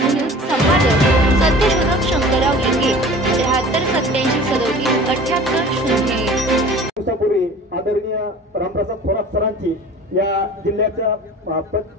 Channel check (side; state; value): both; normal; correlation 0.42